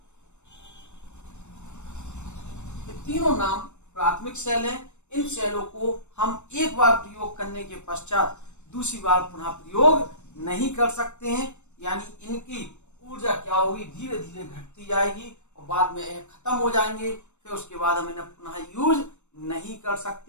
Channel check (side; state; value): right; late; 0.83 ms